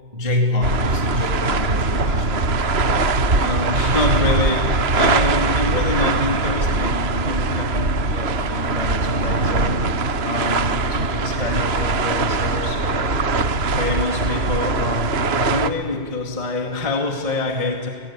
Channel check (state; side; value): late; left; 2.9 ms